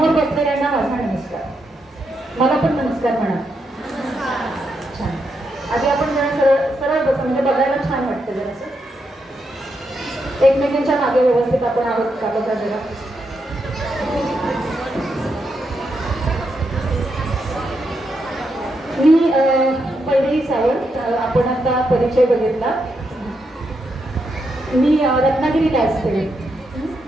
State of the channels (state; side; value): normal; both; correlation 0.82